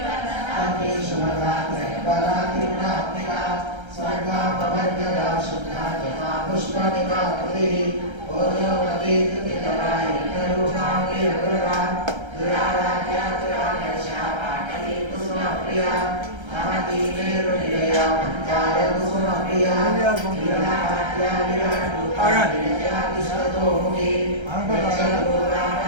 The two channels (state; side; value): late; left; 1.3 ms